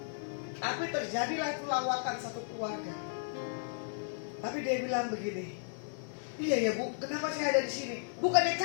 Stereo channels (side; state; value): right; silent; digital silence